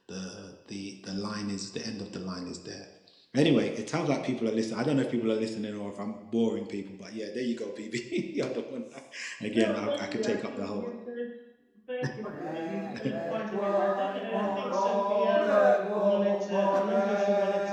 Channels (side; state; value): both; identical; correlation 1.00